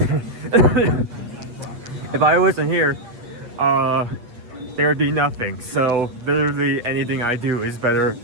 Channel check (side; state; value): left; late; 8.3 ms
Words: if I wasn't here, there would be nothing. So literally anything I do is better